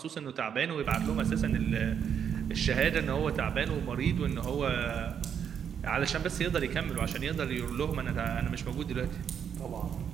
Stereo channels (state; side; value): quieter; left; 8.0 dB